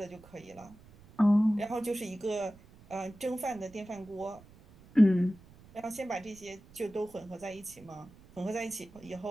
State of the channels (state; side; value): noise; right; rumble, 23 dB below the sound